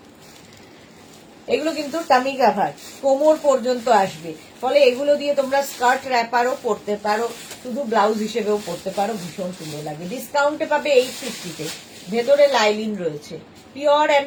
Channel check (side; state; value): both; identical; correlation 1.00